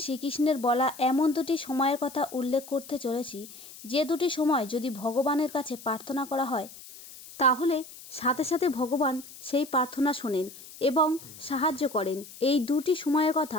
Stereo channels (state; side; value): noise; left; hiss, 17 dB below the sound